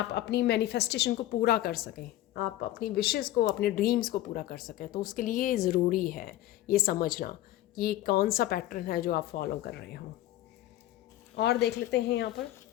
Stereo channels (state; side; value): quieter; right; 14.6 dB